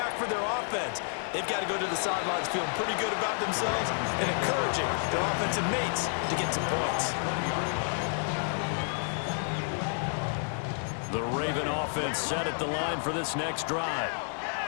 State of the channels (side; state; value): right; silent; 58 dB below the other